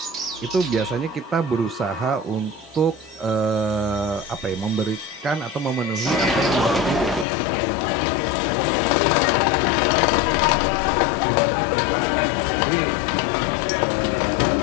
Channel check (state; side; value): drops out; right; at 7.2 s